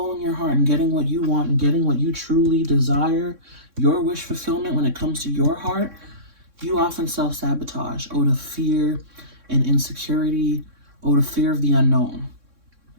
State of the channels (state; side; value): late; left; 3.6 ms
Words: your heart and getting what you want and getting what you truly desire, your wish fulfillment when it comes to your heart, you often self-sabotage out of fear and insecurity, out of fear of the unknown,